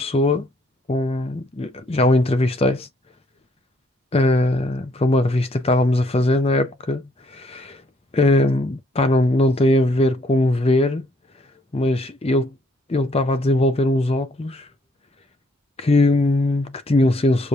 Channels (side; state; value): both; normal; correlation 0.67